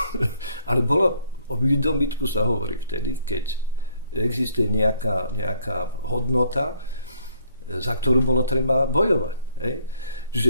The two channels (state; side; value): inverted; both; correlation -0.66